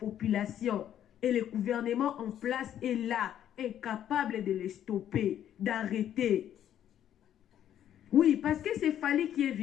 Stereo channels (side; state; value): right; quieter; 10.6 dB